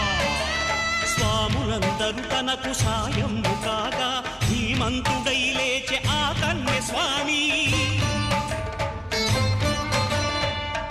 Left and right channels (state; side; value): identical; both; correlation 1.00